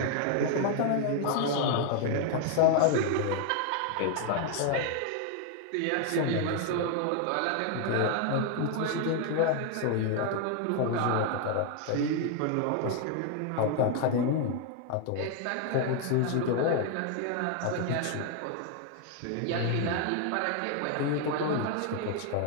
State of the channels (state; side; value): different; both; correlation 0.00